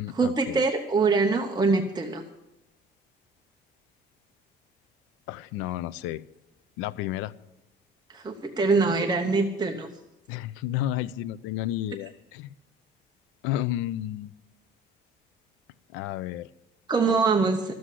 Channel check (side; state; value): both; normal; correlation 0.48